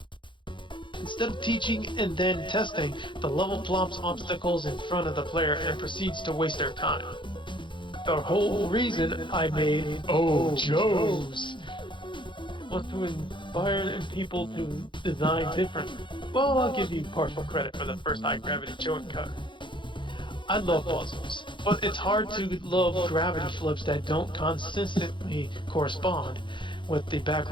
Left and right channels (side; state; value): right; late; 0.23 ms